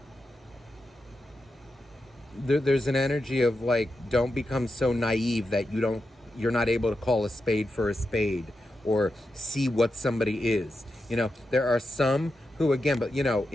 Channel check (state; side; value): normal; both; correlation 0.88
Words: There's an energy of like, don't become so naive that you're not able to call a spade for a spade or see what somebody is. There are some who, again, but